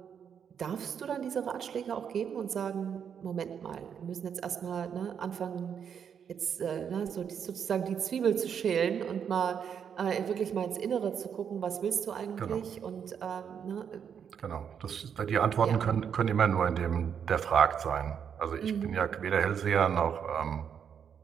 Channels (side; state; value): left; quieter; 7.7 dB